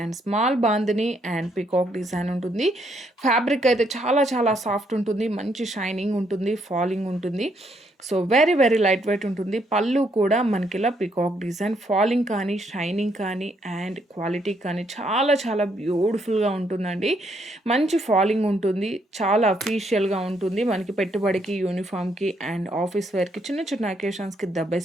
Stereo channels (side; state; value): both; normal; correlation 0.73